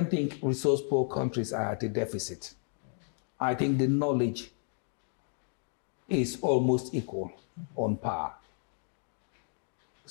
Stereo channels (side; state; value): right; silent; 56 dB below the other